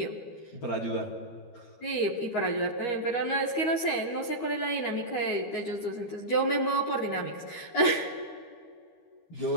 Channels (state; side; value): late; right; 12 ms